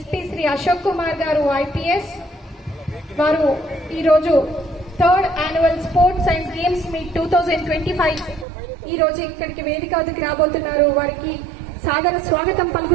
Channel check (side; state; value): left; drops out; at 8.5 s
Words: శ్రీ అశోక్ కుమార్ గారు ఐపీఎస్. వారు ఈరోజు 3rd Annual Sports and Games Meet 2025 ఈ రోజు ఇక్కడికి వేదిక వద్దకి రాబోతున్నారు. వారికి సాదర స్వాగతం